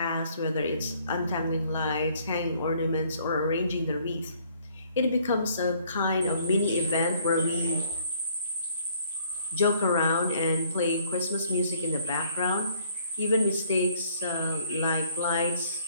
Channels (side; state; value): both; inverted; correlation -0.62